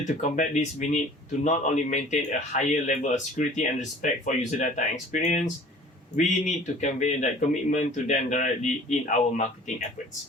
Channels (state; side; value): normal; both; correlation 0.48